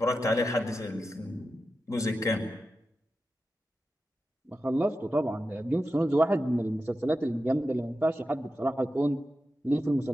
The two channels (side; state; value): both; normal; correlation 0.91